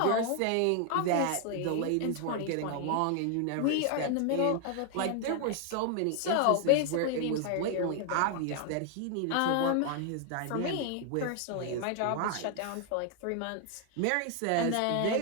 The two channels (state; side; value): different; both; correlation 0.00